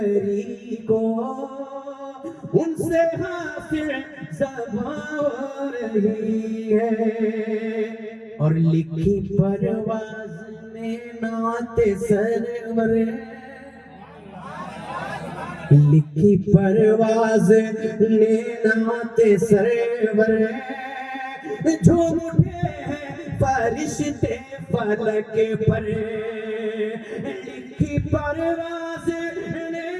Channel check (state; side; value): identical; both; correlation 1.00